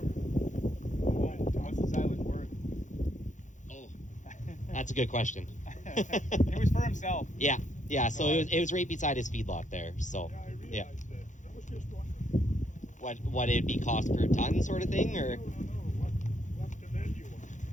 What's the silage worth? That's a good question. It was for himself. Yeah. So it was right beside his feedlot there. So Yeah, I realized yeah. that. I was just wondering. What it'd be cost per ton sort of thing, or No. What's the value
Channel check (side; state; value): right; late; 0.36 ms